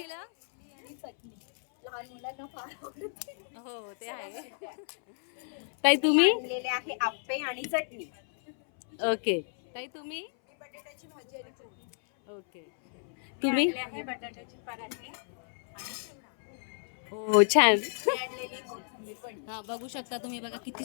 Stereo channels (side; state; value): right; silent; 57 dB below the other